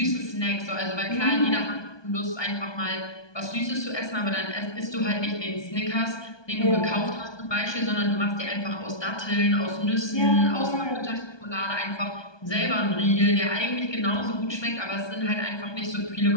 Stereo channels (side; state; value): right; late; 1.2 ms